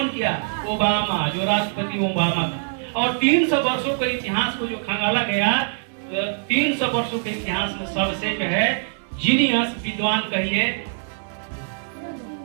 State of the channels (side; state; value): left; silent; 63 dB below the other